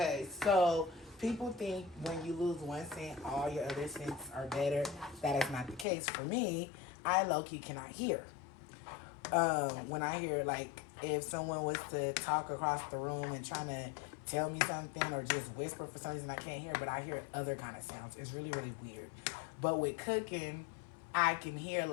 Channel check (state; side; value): drops out; right; at 5.9 s